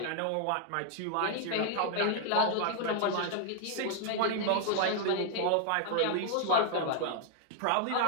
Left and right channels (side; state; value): both; different; correlation 0.00